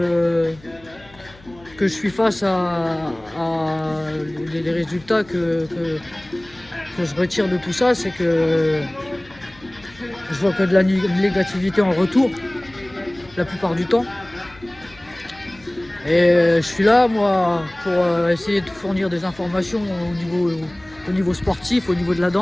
suis face à les résultats que je retire de tout ça, c'est que je vois que de la négativité en retour la plupart du temps. Et je suis là, moi, pour essayer de fournir des informations au niveau sportif, au niveau de la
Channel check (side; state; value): left; noise; hum, 24 dB below the sound